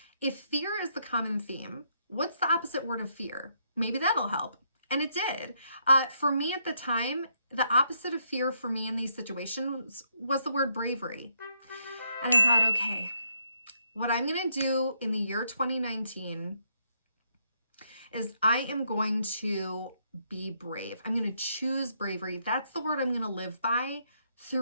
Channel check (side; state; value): both; inverted; correlation -0.75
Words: if fear is the common theme, what's the opposite word of fear? Maybe that'll help. And it did. For me at the time, the opposite of fear for me in these situations was the word bravery. And I thought, okay, what I'm going to do in the year 2019 is I am going to be brave. I'm going to choose bravery. That's the word I'm going to live by